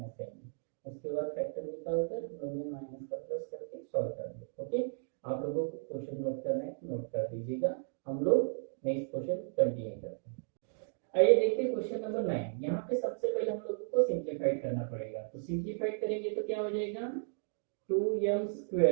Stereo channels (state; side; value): silent; left; digital silence